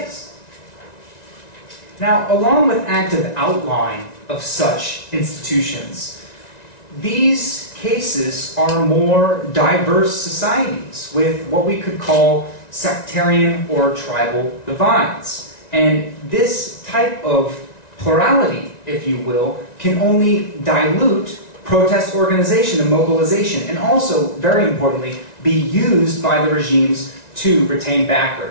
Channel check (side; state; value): right; late; 1.9 ms